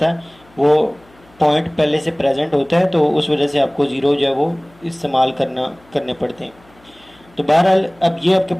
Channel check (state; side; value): noise; left; hum, 29 dB below the sound